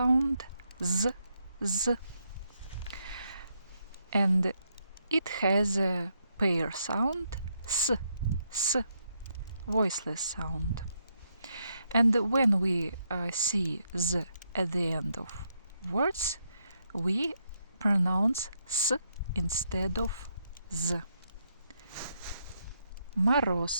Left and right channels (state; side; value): inverted; both; correlation -0.78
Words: Z. Z. And it has a pair sound. S. S. Voiceless sound. And when we see Z at the end of words, we pronounce S instead of Z.